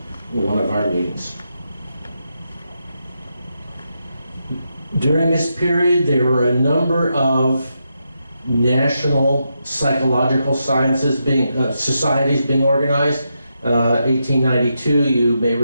one of our meetings. During this period, there were a number of national psychological sciences societies being organized. 1892, you may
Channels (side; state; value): both; inverted; correlation -0.84